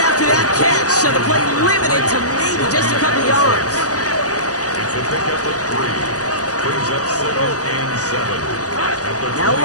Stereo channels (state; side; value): late; right; 0.67 ms